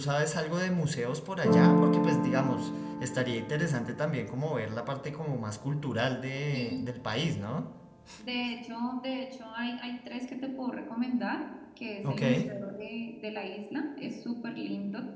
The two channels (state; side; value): identical; both; correlation 1.00